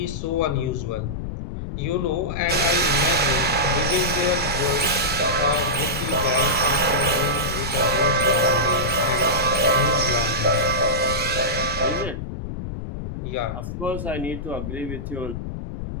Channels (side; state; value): left; noise; rumble, 6 dB below the sound